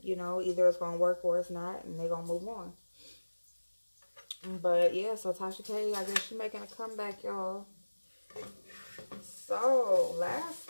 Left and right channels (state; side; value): inverted; both; correlation -1.00